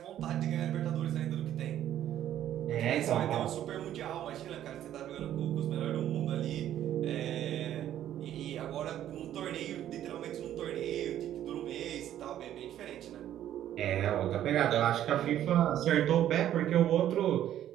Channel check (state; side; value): quieter; left; 11.6 dB